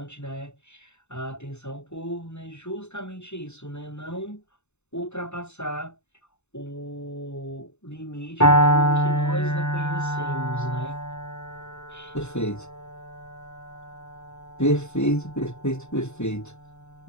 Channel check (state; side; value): late; right; 0.82 ms